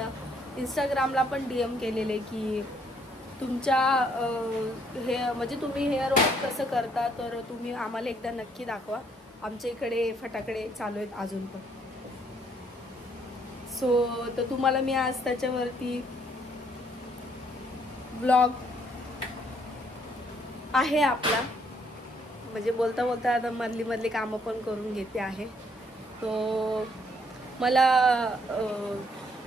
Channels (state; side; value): normal; both; correlation 0.67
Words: इंस्टाग्रामला पण DM केलेले की तुमच्या हे म्हणजे तुम्ही हेअर वॉश कसं करता, तर तुम्ही आम्हाला एकदा नक्की दाखवा। आमच्या इकडे फटाकडे चालू आहेत अजून पण। सो तर तुम्हाला मी आज त्याच्यावरती ब्लॉग आहे आपला, म्हणजे बोलता बोलता आता मधली कामं पण करून घेते आहे। तो मला